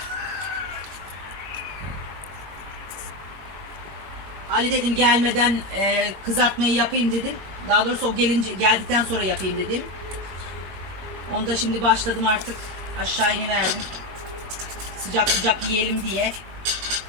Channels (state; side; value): late; left; 21 ms